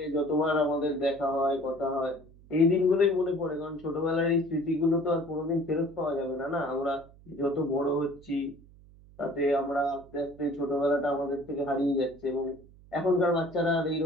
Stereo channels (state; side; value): noise; right; hum, 24 dB below the sound